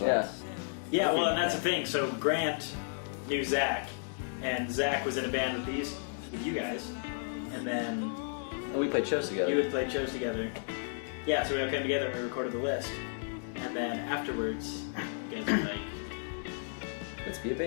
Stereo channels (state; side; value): silent; right; digital silence